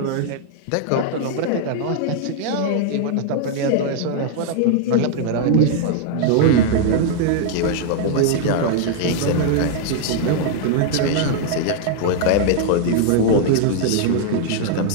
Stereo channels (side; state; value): both; different; correlation 0.00